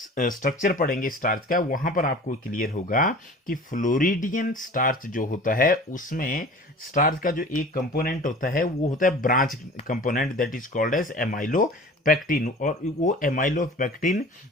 पढ़ेंगे स्टार्च का, वहां पर आपको क्लियर होगा कि फ्लोरिडियन स्टार्च जो होता है उसमें स्टार्च का जो एक कंपोनेंट होता है वो होता है branch component that is called as amylopectin. और वो एमाइलो पैक्टिन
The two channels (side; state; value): both; normal; correlation 0.42